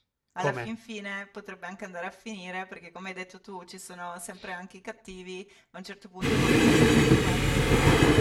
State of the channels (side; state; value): both; identical; correlation 1.00